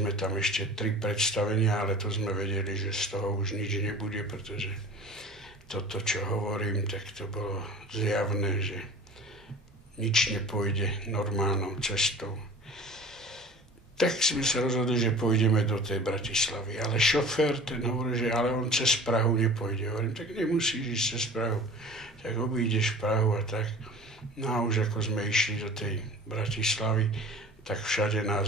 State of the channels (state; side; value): normal; both; correlation 0.41